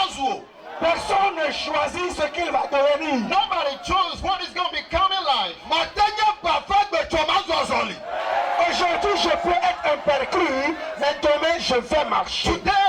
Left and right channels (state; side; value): identical; both; correlation 1.00